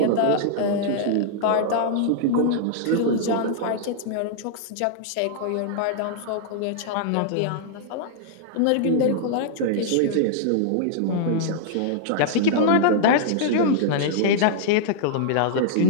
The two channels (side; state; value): both; different; correlation -0.01